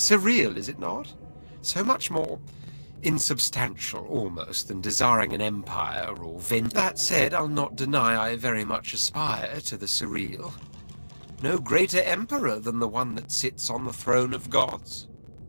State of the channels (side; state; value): both; inverted; correlation -1.00